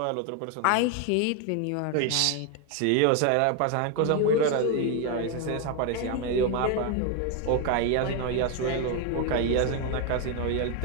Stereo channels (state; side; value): different; both; correlation 0.01